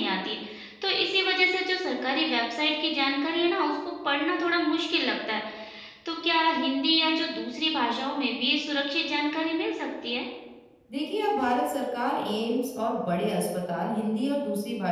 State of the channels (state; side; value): identical; both; correlation 1.00